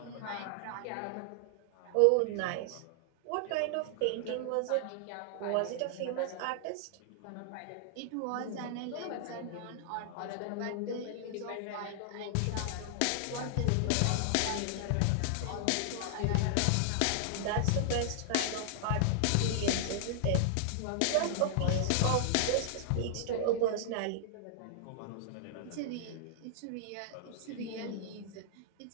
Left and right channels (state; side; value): different; both; correlation -0.01